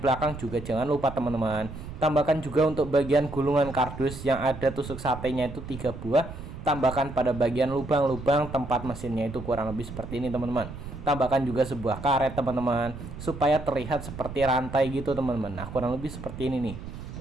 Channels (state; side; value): noise; right; rumble, 11 dB below the sound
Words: belakang juga jangan lupa, teman-teman. Tambahkan juga untuk bagian gulungan kardus yang ada tusuk satenya itu 3 buah. Tambahkan pada bagian lubang-lubang tempat mesinnya itu kurang lebih seperti ini, teman-teman. Tambahkan juga sebuah karet, teman-teman, supaya terlihat seperti rantai gitu, teman-teman. Nah, kurang lebih seperti ini nih.